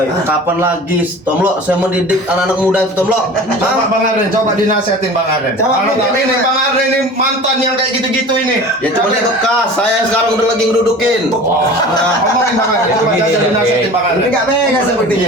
kapan lagi, Tomlo? Saya mendidik anak-anak muda itu, Tomlo. Coba Bang Arden, coba dinasihatin Bang Arden. Coba, Kalau Bang, tapi ini Bang. Bang Arden ini mantan yang kayak gitu-gitu ini. Ya cuma dia bekas. Saya sekarang udah lagi ngedudukin. Nah, ngomongin Bang Arden, coba Begini, kasih dinasihatin Bang Arden. Enggak mega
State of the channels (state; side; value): normal; both; correlation 0.39